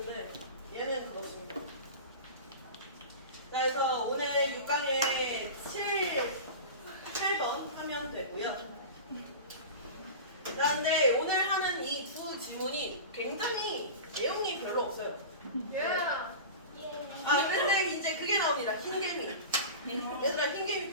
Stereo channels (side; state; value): both; inverted; correlation -0.31